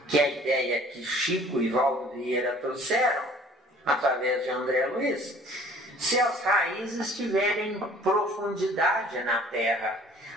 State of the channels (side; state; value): both; normal; correlation 0.52